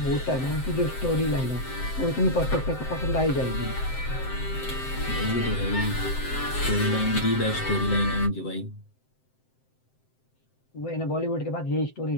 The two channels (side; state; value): right; late; 7.7 ms